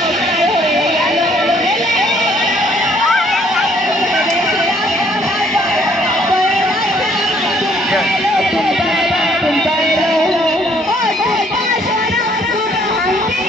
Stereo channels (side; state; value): both; normal; correlation 0.63